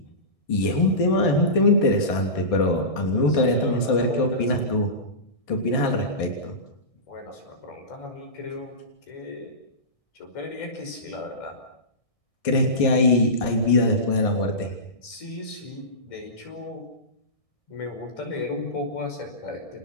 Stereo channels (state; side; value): late; right; 1.6 ms